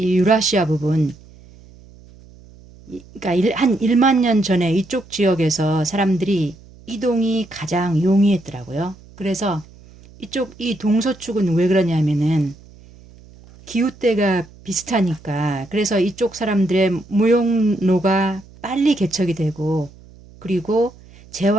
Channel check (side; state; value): right; noise; hum, 23 dB below the sound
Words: 유라시아 부분, 그러니까 한 1만 년 전에 이쪽 지역에서 사람들이 이동이 가장 용이했더라고요. 그래서 이 동서축은 왜 그러냐면은 기후대가 비슷하니까 그래서 이쪽 사람들의 무용로가 빨리 개척이 되고 그리고